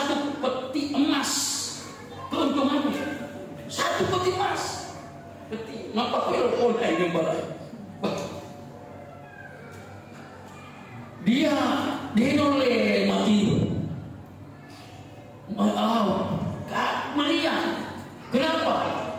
peti emas. Keuntungannya 1 peti emas. Peti. Nampak kalau ini barang. Dia noleh mati. Meriah. Kenapa?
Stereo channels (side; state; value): both; identical; correlation 1.00